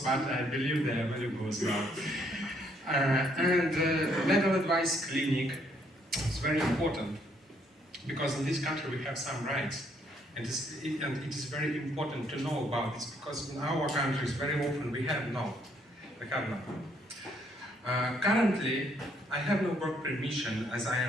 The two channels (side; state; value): both; normal; correlation 0.69